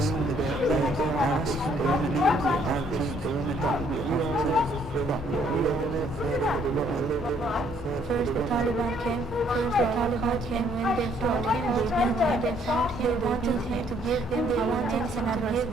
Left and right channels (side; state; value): both; normal; correlation 0.65